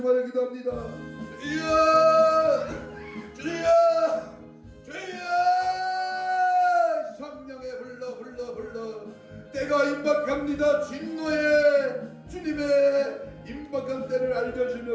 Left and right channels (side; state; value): both; identical; correlation 1.00